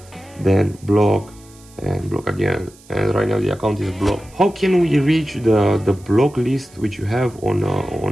then block and block again, and right now the account is blocked. How can we reach the block list which you have on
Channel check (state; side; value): noise; right; hiss, 26 dB below the sound